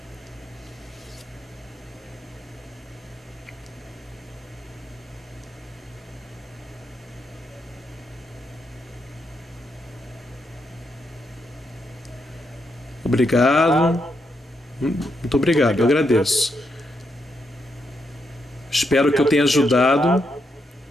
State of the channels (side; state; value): both; normal; correlation 0.81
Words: Obrigado. Muito obrigado, eu agradeço. Espero que eu tenha ajudado.